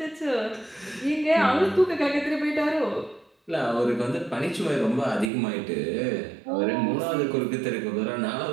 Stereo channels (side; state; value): left; drops out; at 5.3 s